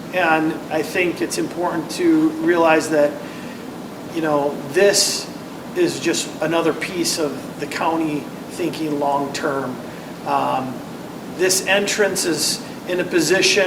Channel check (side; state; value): both; identical; correlation 1.00